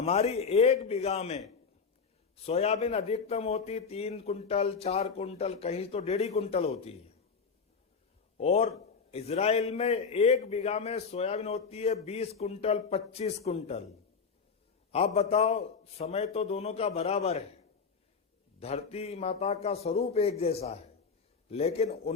1 बीघा में सोयाबीन अधिकतम होती 3 कुंटल, 4 कुंटल, कहीं तो 1.5 कुंटल होती है। और इजराइल में 1 बीघा में सोयाबीन होती है 20 कुंटल, 25 कुंटल। आप बताओ, समय तो दोनों का बराबर है, धरती माता का स्वरूप एक जैसा है, लेकिन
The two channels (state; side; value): quieter; right; 5.4 dB